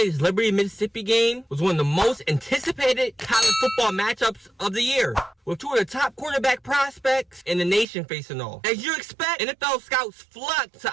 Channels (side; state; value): left; drops out; at 7.9 s